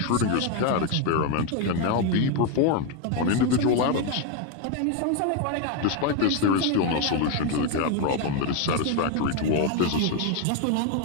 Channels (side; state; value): both; different; correlation 0.02